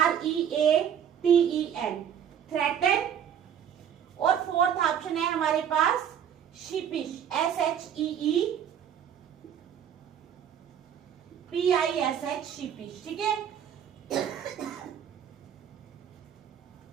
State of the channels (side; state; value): left; quieter; 8.9 dB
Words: थ्रेटन। और फोर्थ ऑप्शन है हमारे पास शिपिश, SHEEPISH, शिपिश। ठीक है,